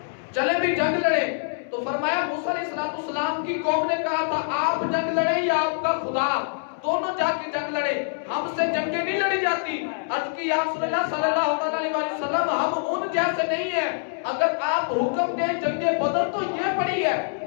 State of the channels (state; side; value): silent; right; 62 dB below the other